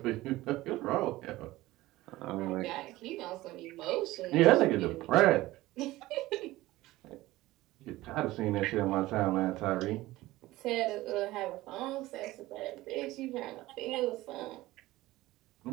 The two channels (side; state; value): left; quieter; 17.8 dB